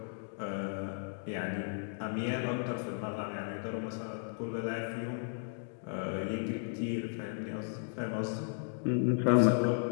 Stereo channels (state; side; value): silent; right; digital silence